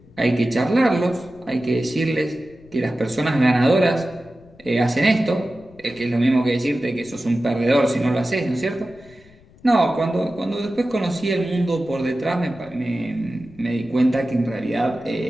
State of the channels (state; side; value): noise; left; rumble, 25 dB below the sound